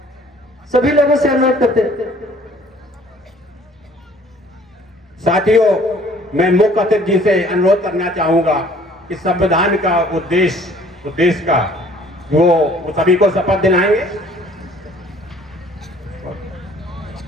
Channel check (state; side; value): normal; both; correlation 0.55